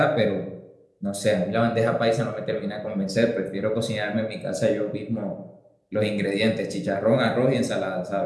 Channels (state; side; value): identical; both; correlation 1.00